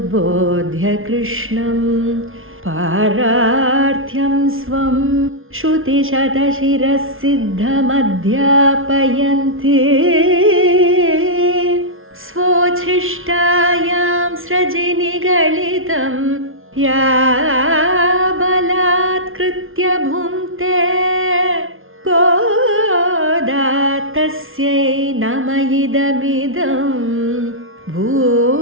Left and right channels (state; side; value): late; left; 0.60 ms